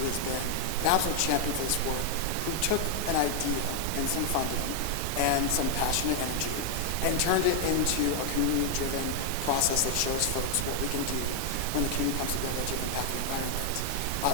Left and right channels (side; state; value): both; different; correlation 0.00